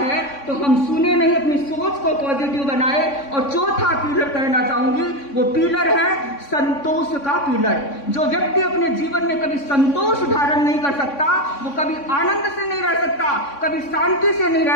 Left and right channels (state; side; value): late; right; 3.6 ms